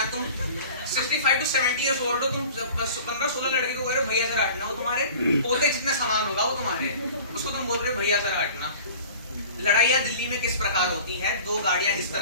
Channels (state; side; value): inverted; both; correlation -0.43